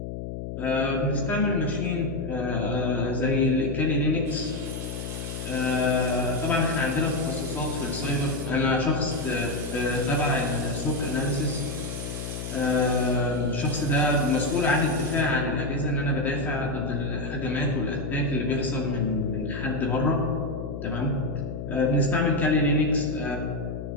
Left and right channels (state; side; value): noise; left; hum, 7 dB below the sound